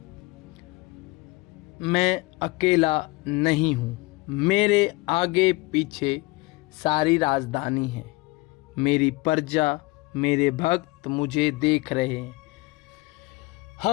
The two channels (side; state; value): right; quieter; 23.3 dB